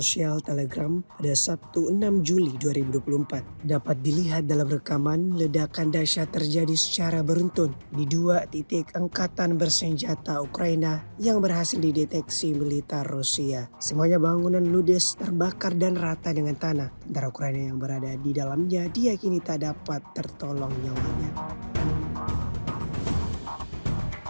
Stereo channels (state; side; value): inverted; both; correlation -1.00